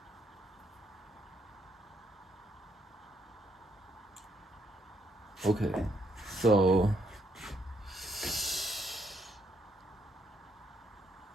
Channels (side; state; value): both; normal; correlation 0.73